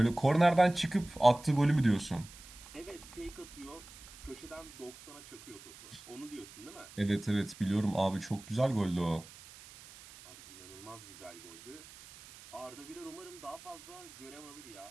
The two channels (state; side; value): noise; right; hiss, 18 dB below the sound